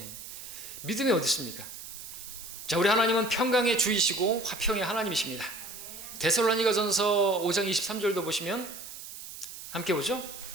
믿음이 어디 있습니까? 자, 우리 하나님은 평강의 주이시고 화평의 하나님이십니다. 데살로니가전서 5장 23절도 보시면 함께 보죠.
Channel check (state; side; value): noise; right; hiss, 12 dB below the sound